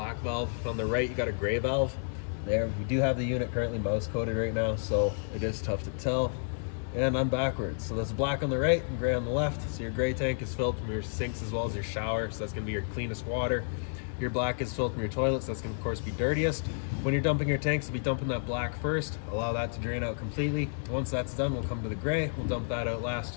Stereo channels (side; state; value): right; silent; 57 dB below the other